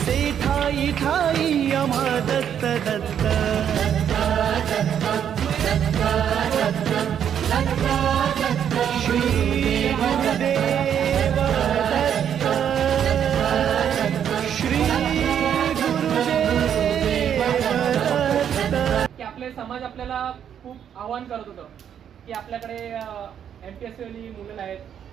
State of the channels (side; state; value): left; quieter; 8.9 dB